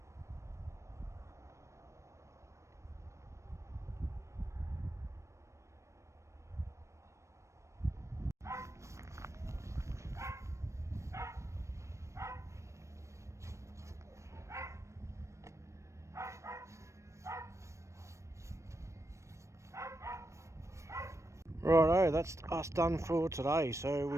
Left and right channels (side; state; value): left; late; 0.14 ms